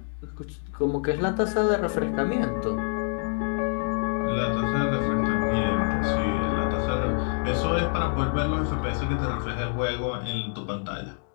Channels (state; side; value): silent; right; 57 dB below the other